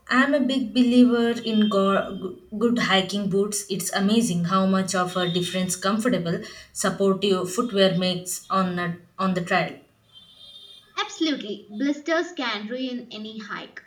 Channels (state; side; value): identical; both; correlation 1.00